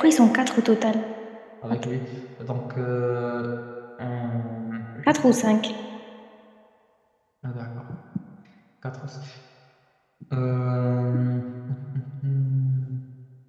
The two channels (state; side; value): identical; both; correlation 1.00